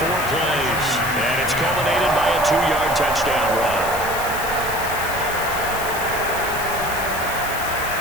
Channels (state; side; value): noise; left; hiss, 9 dB below the sound